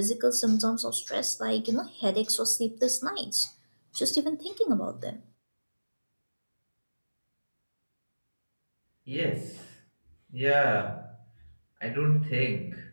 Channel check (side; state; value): both; inverted; correlation -1.00